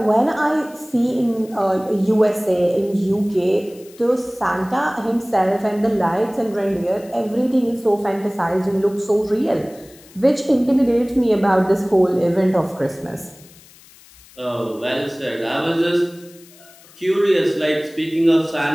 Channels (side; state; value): left; noise; hiss, 24 dB below the sound